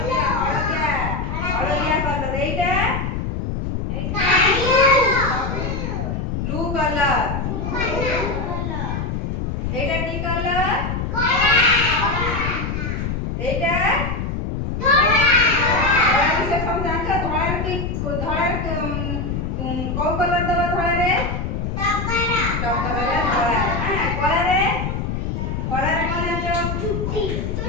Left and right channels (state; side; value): noise; left; rumble, 2 dB below the sound